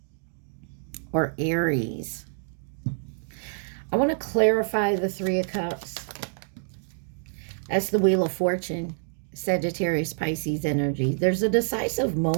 or Aries. I want to clarify the Three of Cups. That's the Wheel of Fortune, Sagittarius, Pisces energy. There's a decisive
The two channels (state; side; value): silent; left; digital silence